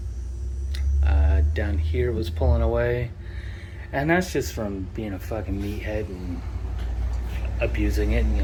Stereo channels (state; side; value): identical; both; correlation 1.00